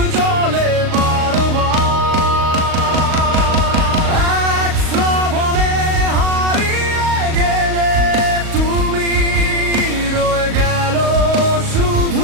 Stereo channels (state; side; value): late; left; 38 ms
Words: জ্বলে বারবার। এক শ্রাবণে হারিয়ে গেলে তুমি, রয়ে গেল